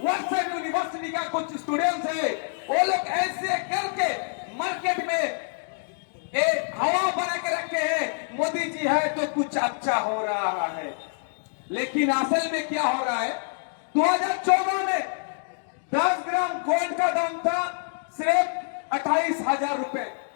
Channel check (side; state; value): right; silent; digital silence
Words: वर्षन यूनिवर्सिटी का कुछ स्टूडेंट्स है, वो लोग ऐसे करके मार्केट में हवा बना के रखे हैं, मोदी जी है तो कुछ अच्छा हो रहा है। लेकिन असल में क्या हो रहा है, 2014 में 10 ग्राम गोल्ड का दाम था सिर्फ 28,000 रुपए,